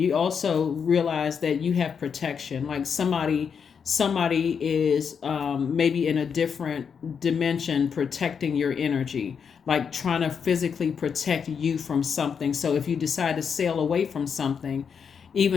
also realize that you have protection. Like somebody is maybe in a different dimension protecting your energy, like trying to physically protect you from something. So if you decide to sail away from something,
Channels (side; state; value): right; quieter; 6.7 dB